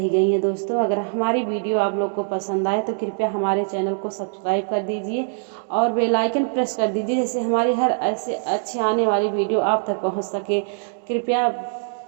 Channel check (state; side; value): silent; left; digital silence